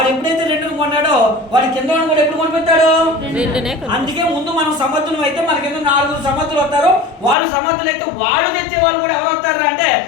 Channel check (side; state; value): right; drops out; at 7.4 s